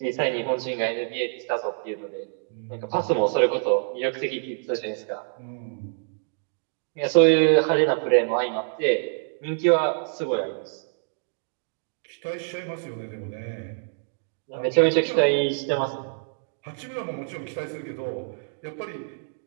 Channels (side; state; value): left; silent; digital silence